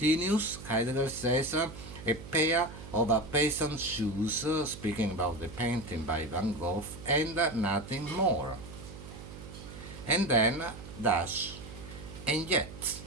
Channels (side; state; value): right; noise; hum, 14 dB below the sound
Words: Heidegger says, a pair of peasant shoes, speaking about the painting by Van Gogh, and nothing more. And then dash, and yet,